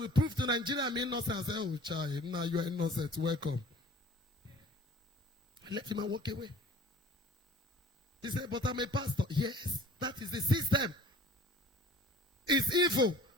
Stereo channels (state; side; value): normal; both; correlation 0.47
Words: prove to Nigeria I'm innocent. I said, oh, child, now you are innocent. Welcome. I let him walk away. He said, but I'm a pastor. Yes, that is the system. It's evil.